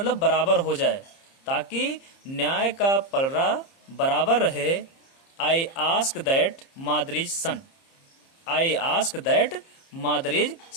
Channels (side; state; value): right; late; 30 ms